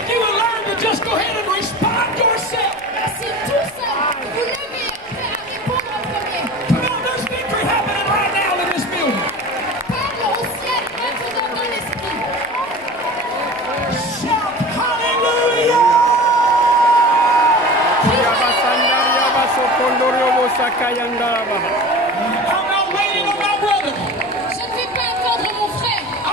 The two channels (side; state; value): left; noise; rumble, 27 dB below the sound